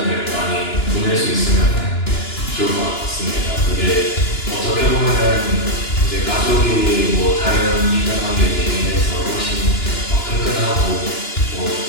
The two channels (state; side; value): late; right; 2.9 ms